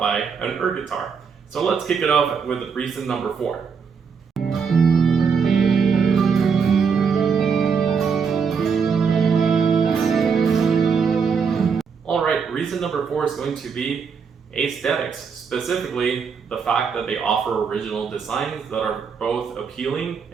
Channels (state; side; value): quieter; left; 6.0 dB